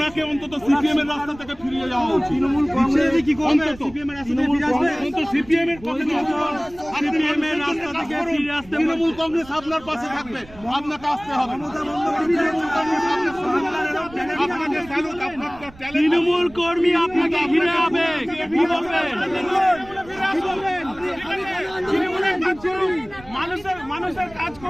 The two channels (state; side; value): noise; right; rumble, 21 dB below the sound